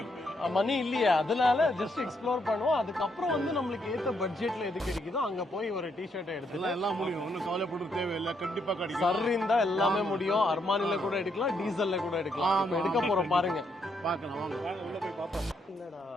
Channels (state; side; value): normal; both; correlation 0.76